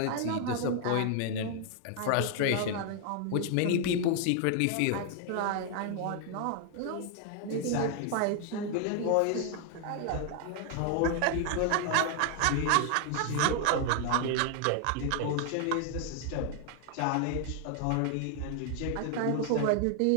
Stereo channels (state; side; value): different; both; correlation 0.00